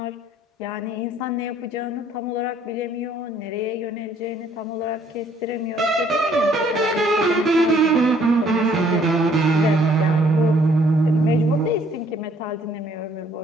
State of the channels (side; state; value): both; normal; correlation 0.63